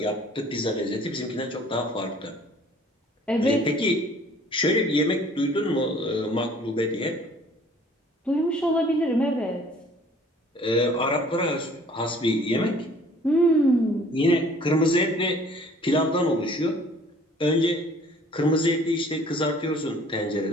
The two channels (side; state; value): both; normal; correlation 0.53